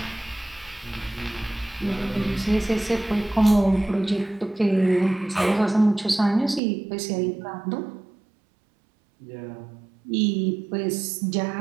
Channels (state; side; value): drops out; left; at 6.6 s